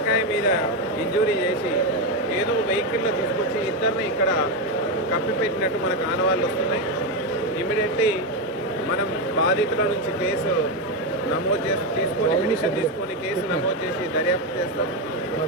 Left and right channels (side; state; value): both; normal; correlation 0.09